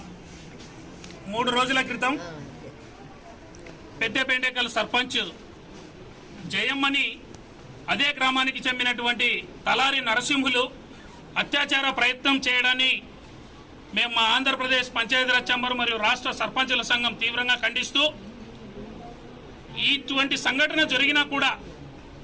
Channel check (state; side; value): identical; both; correlation 1.00